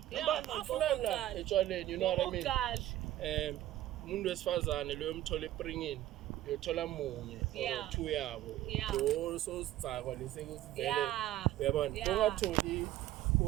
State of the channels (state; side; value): quieter; left; 14.2 dB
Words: afuna etshwaleni, you know what I mean. Umuntu wesifazane lo yomthola ePringini uyothola munye or two yabo lo so sicakwa lesekuthi vele uyabona ungatholi